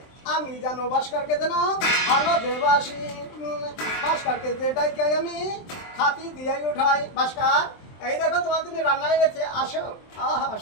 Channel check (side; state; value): right; late; 23 ms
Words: আমি জানো ভাস্করকে যেন ভালো দেবাসি। ভাস্করকে যেটাই চাই আমি খাতি দিয়ে উঠাই। ভাস্কর, এই দেখো তোমার তুমি রান্নায় গেছে, আসো। আহা,